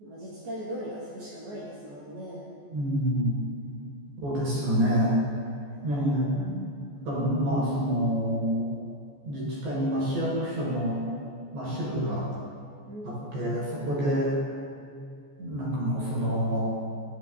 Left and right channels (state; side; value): late; left; 14 ms